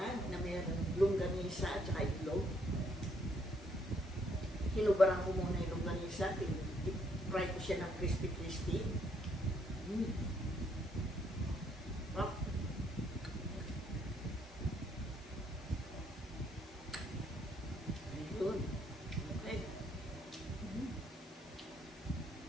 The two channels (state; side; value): normal; both; correlation 0.70